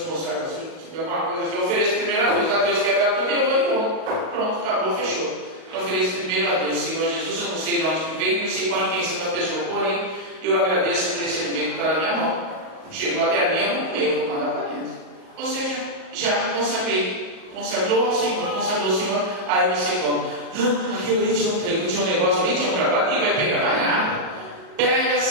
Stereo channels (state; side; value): late; left; 38 ms